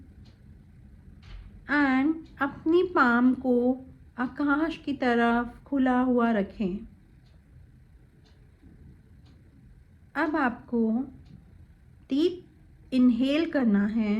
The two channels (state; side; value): identical; both; correlation 1.00